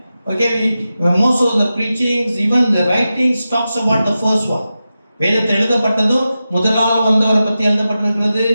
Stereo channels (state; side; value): inverted; both; correlation -0.92